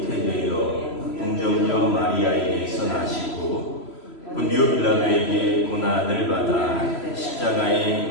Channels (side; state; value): right; late; 3.0 ms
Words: 동정녀 마리아에게서 나시고 본디오 빌라도에게 고난을 받아